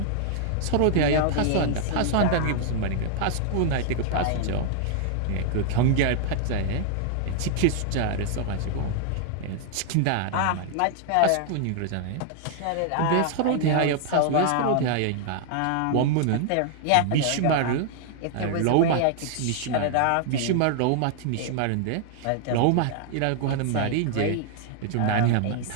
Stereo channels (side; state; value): both; different; correlation 0.00